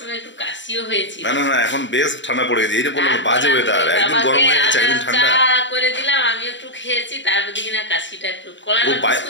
একটু কাশিও হয়েছিল না না না এখন বেশ ঠান্ডা পড়ে গেছে এই যে বললাম বাজে ওয়েদার একদিন গরম হয়ে যাচ্ছে একদিন ঠান্ডা চা করে দিলাম আমি একটু খেয়েছি তারপর দিকে না কাশিটা একটু কলা ও বাই-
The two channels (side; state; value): right; late; 0.54 ms